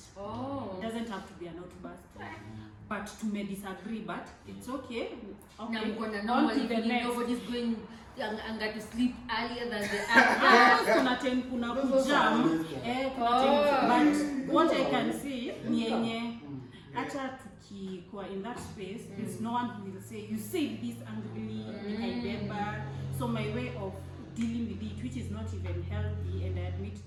It doesn't have to be an outburst. But to may disagree, but it's okay. On to the next. Nobody's going to sleep earlier than the other. But what I can see, acha tukikuwa in that space, there's no one who will say, you say this angrily, I remember. So my way of dealing with it, which is not even healthy, and I admit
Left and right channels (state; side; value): identical; both; correlation 1.00